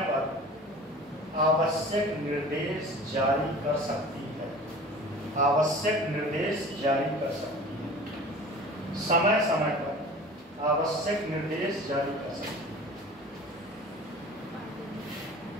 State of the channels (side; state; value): both; normal; correlation 0.41